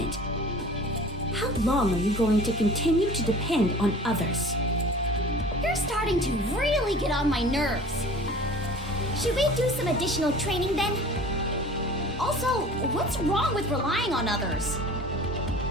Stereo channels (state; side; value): normal; both; correlation 0.42